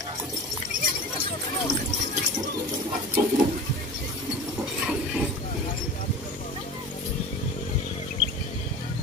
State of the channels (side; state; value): both; normal; correlation 0.35